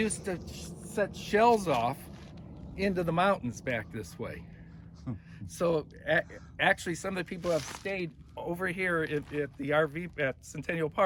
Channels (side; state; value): both; identical; correlation 1.00